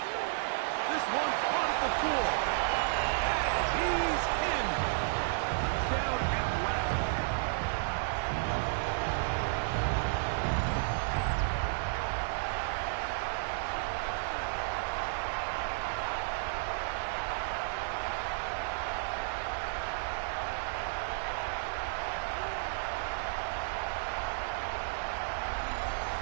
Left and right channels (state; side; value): silent; left; digital silence